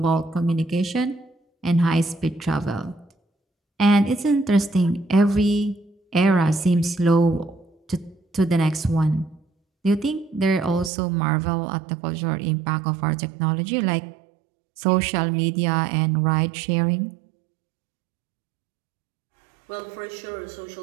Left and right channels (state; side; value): drops out; left; at 10.9 s